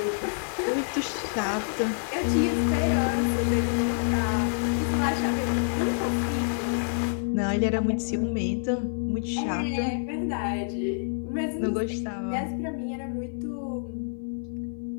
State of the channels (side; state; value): right; silent; 59 dB below the other